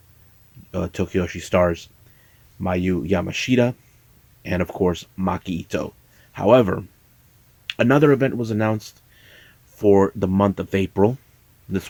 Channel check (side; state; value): both; identical; correlation 1.00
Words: Tokiyoshi stars Mayu Yamashita and, of course, Maki Ito. However, another event was announced for the month of April.